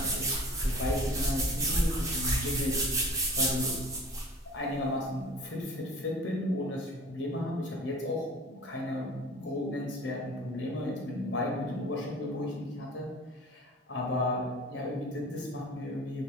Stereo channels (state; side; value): normal; both; correlation 0.45